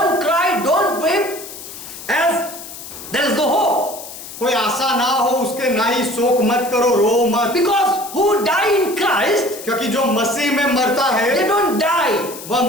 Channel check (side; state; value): left; noise; hiss, 13 dB below the sound